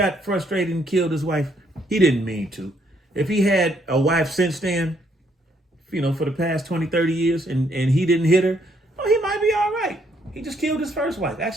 frustrated and killed his wife. He didn't mean to. If he had a wife since then, you know, for the past 20, 30 years and he didn't hit her, oh, he might be all right. He just killed his first wife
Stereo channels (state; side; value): normal; both; correlation 0.70